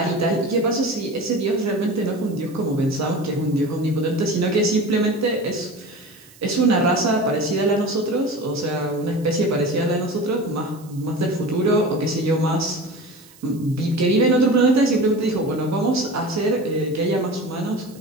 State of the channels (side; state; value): right; noise; hiss, 25 dB below the sound